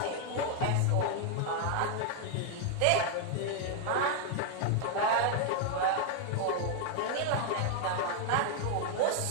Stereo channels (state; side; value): different; both; correlation 0.00